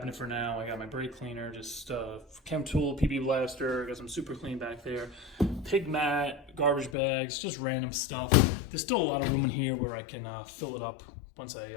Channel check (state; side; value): drops out; right; at 7.0 s